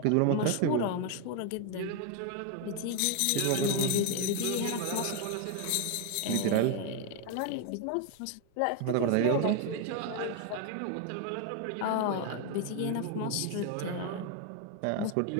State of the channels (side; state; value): both; different; correlation 0.01